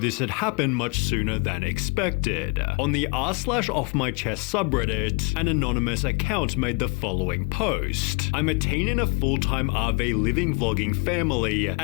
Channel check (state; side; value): quieter; right; 31.0 dB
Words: had happened much sooner than expected. On the r/offmychest subreddit, an anonymous account made the following post. I'm a teen in a full-time RV living vlogging family,